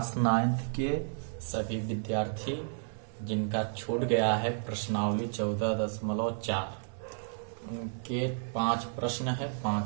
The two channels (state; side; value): silent; left; digital silence